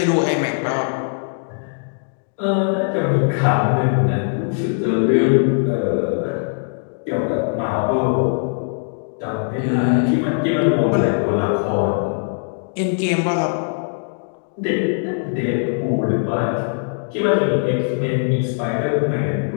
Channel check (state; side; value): silent; right; digital silence